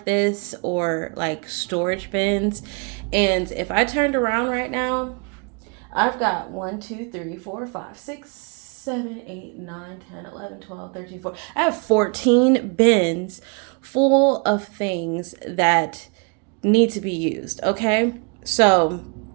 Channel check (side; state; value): left; quieter; 34.3 dB